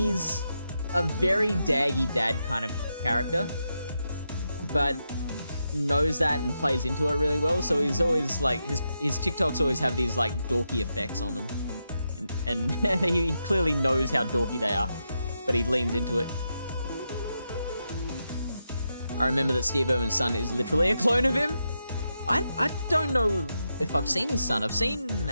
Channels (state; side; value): inverted; both; correlation -0.85